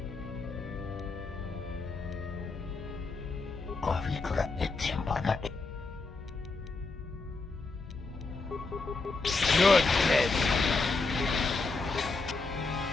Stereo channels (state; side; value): quieter; right; 3.8 dB